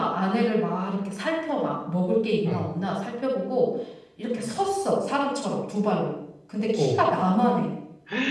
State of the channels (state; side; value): identical; both; correlation 1.00